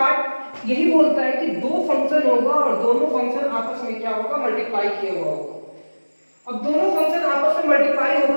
यही बोलता है कि दो फंक्शन होगा और दोनों फंक्शन आपस में क्या होगा, मल्टीप्लाई किया हुआ होगा। अब दोनों फंक्शन आपस में मल्टीप्लाई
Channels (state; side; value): inverted; both; correlation -1.00